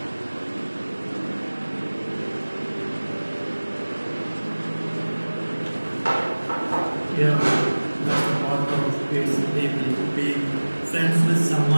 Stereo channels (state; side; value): inverted; both; correlation -1.00